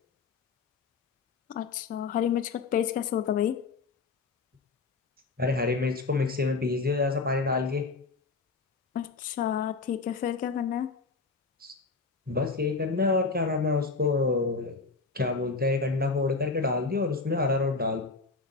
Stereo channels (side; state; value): right; quieter; 4.3 dB